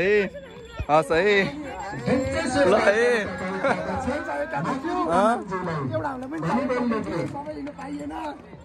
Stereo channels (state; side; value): identical; both; correlation 1.00